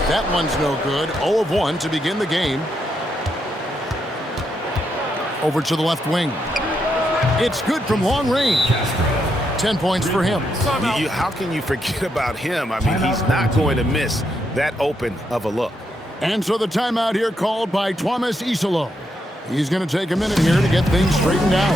That one's no good. 0 of 1 to begin the game. Over to the left wing. It's good from long range. 10 points for him. How can you forget about him? I mean, he's not going to miss that open of a look. And so the timeout here called by Thomas Isolo. He's going to take a minute here to get things straightened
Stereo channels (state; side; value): normal; both; correlation 0.80